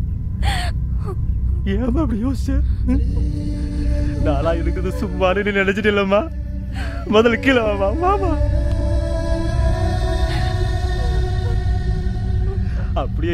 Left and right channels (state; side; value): identical; both; correlation 1.00